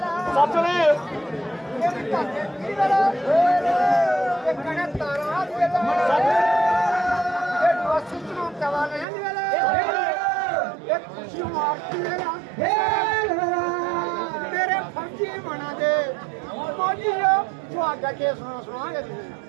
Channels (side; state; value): left; drops out; at 9.1 s